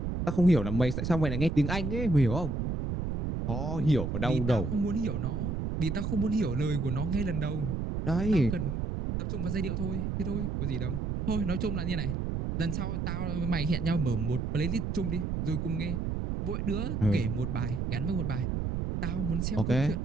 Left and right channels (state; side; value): noise; right; rumble, 1 dB below the sound